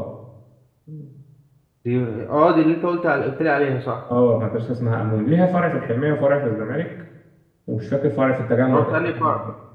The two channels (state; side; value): identical; both; correlation 1.00